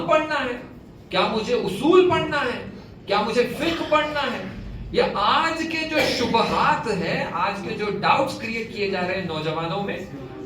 پڑھنا ہے؟ کیا مجھے اصول پڑھنا ہے؟ کیا مجھے فقہ پڑھنا ہے؟ یا آج کے جو شبہات ہیں، آج کے جو ڈاؤٹس کریٹ کیے جا رہے ہیں نوجوانوں میں،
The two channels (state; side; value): identical; both; correlation 1.00